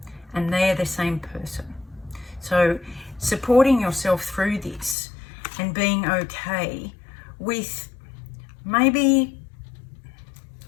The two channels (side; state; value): right; drops out; at 5.0 s